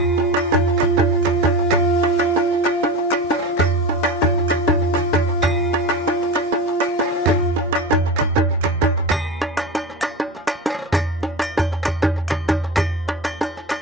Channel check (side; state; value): both; normal; correlation 0.27